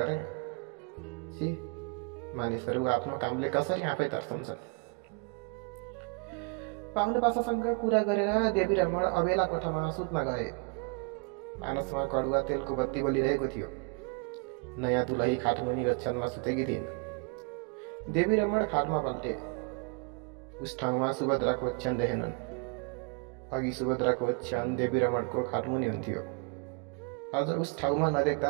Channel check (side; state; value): left; quieter; 34.0 dB